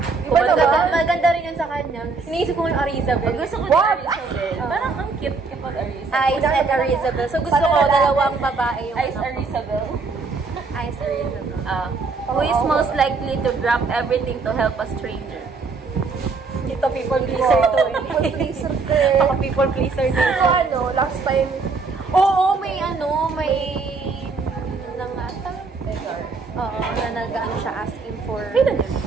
Di ba maganda rin yun sa kanya? Iniisip ko yung Arizabel. Gusto ko na Arizabel. Parang ang cute kapag Arizabel. Ice and Arizabel. So gusto ko dalawang babae yung Ice Arizabel. Ice Arizabel. Who is most likely to drop everything to help a stranger? Ito people pleaser to eh. People pleaser ka eh. Baka people pleaser din. Pero last time, Oo, may nangata. Oo, na nag-ano siya asking for... Kailan yun?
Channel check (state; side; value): quieter; left; 4.3 dB